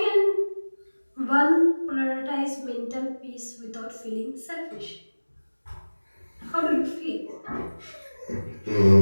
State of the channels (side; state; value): both; inverted; correlation -1.00